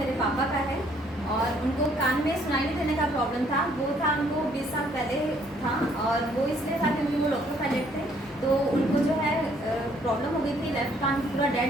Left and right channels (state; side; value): normal; both; correlation 0.65